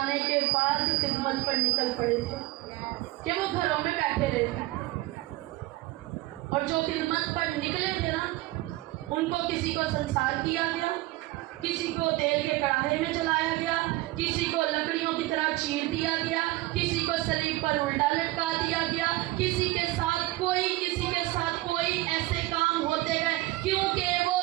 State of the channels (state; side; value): quieter; left; 18.8 dB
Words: کے بعد خدمت پر نکل پڑے تھے کہ وہ گھروں میں بیٹھے رہے تھے، اور جو خدمت پر نکلے تھے نا ان کو کسی کو سنسار کیا گیا، کسی کو تیل کے کڑاہے میں جلایا گیا، کسی کو لکڑیوں کی طرح چیر دیا گیا، کسی کو صلیب پر الٹا لٹکا دیا گیا، کسی کے ساتھ کوئی ایسے کام ہوتے گئے کیونکہ وہ